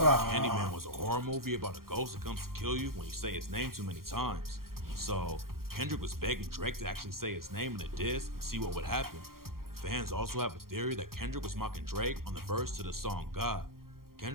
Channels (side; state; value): left; late; 0.92 ms